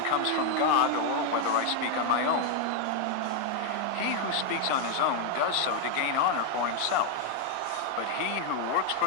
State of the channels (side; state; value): both; different; correlation 0.01